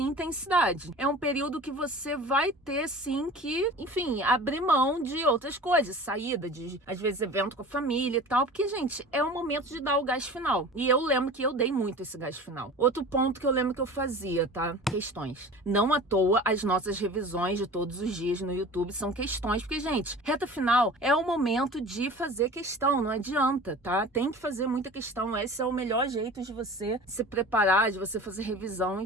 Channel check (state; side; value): normal; both; correlation 0.39